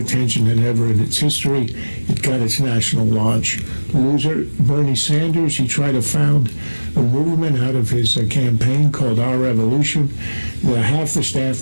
than ever in its history. It got its national launch. Loser, Bernie Sanders, he tried to found a movement out of his campaign called Our Revolution. Half the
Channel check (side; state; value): both; inverted; correlation -1.00